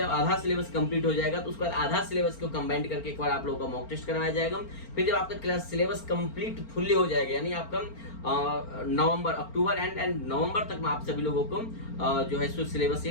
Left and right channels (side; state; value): right; late; 4.4 ms